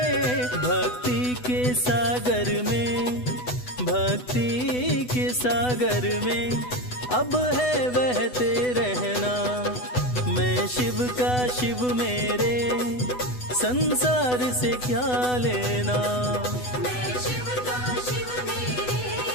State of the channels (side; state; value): right; late; 8.1 ms